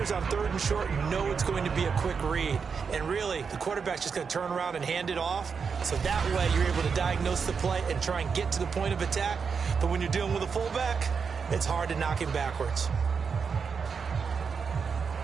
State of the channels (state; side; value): quieter; left; 5.8 dB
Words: on 3rd and short know it's going to be a quick read. And really, the quarterback's just going to turn around and hand it off. So that way, you're able to diagnose the play and try and get to the point of attack. But when you're dealing with a fullback, it's hard to knock him backwards.